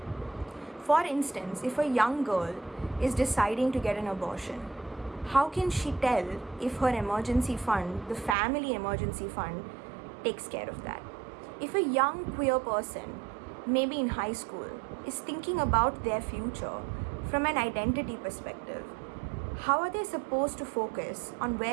For instance, if a young girl is deciding to get an abortion, how can she tell if her emergency fund, the family emergency fund, takes care of that? If a young queer person, maybe in high school, is thinking about their future from an identity perspective, how are they supposed to focus on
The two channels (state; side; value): drops out; left; at 8.3 s